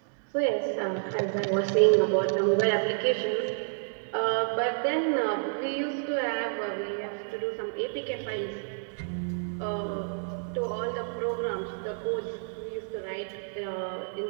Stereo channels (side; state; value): left; silent; digital silence